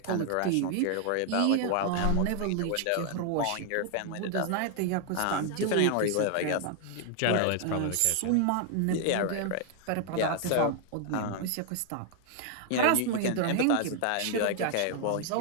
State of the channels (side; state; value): both; different; correlation 0.00